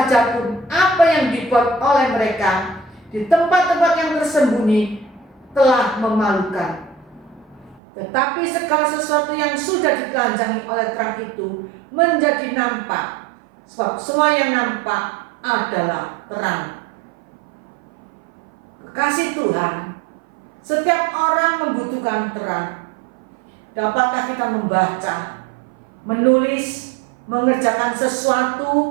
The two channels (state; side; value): drops out; left; at 7.8 s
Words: pun apa yang dibuat oleh mereka di tempat-tempat yang tersembunyi telah memalukan. Tetapi segala sesuatu yang sudah ditelanjangi oleh terang itu menjadi nampak, sebab semua yang nampak adalah terang. Kekasih Tuhan, setiap orang membutuhkan terang. Dapatkah kita membaca, menulis, mengerjakan